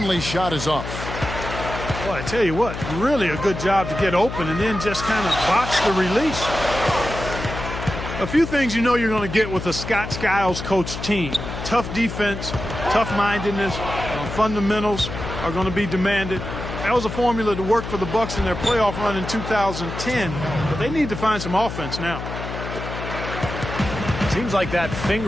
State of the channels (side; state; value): left; noise; hum, 7 dB below the sound